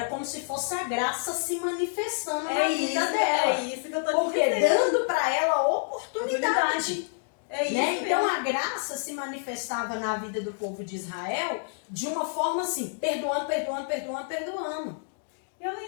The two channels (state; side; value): silent; right; digital silence